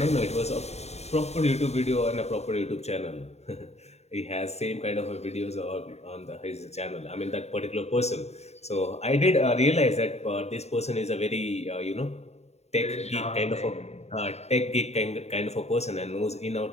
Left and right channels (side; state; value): right; late; 0.31 ms